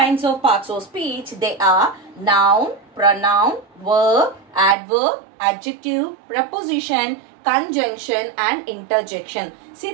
of parts of speech. They are noun, pronoun, verb, adverb, adjective, preposition, conjunction, and interjection. See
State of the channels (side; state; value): left; drops out; at 4.8 s